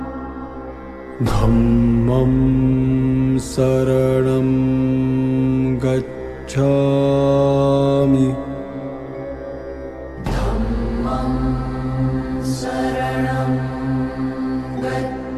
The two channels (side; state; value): both; identical; correlation 1.00